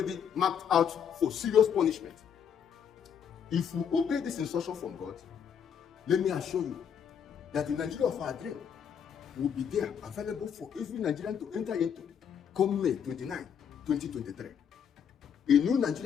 marked out for serious punishment. If we obey this instruction from God, let me assure you that the Nigeria of our dream will be there, available for every Nigerian to enter into come May 29, 2023. A new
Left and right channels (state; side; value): quieter; right; 7.8 dB